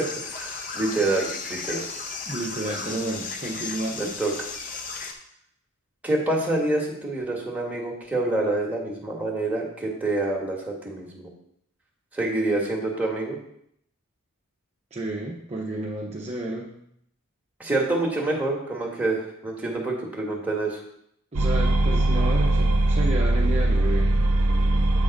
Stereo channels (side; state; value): both; normal; correlation 0.74